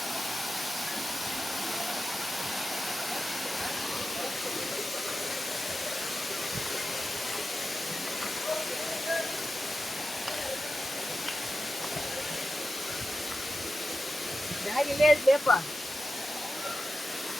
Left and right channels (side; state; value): both; normal; correlation 0.91